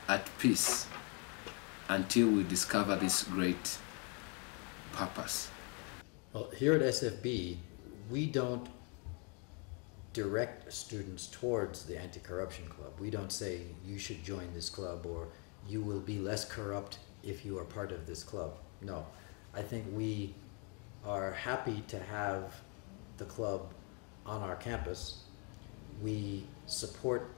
at peace until we discover this great purpose. Well, here at SFB, we don't direct students towards the Anti-Corruption Club. We don't say you should join this club or you will be less corrupt if you are part of this club. No, I think we are happy to have the club on our campus. We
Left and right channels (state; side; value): quieter; right; 35.4 dB